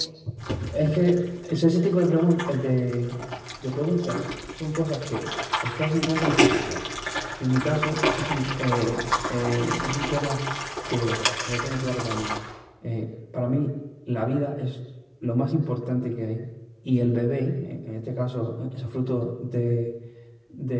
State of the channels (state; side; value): identical; both; correlation 1.00